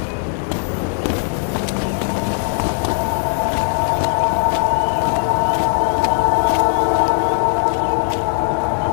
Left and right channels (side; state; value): right; silent; 66 dB below the other